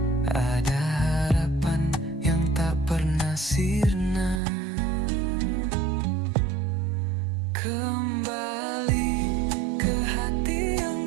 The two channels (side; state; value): left; drops out; at 4.4 s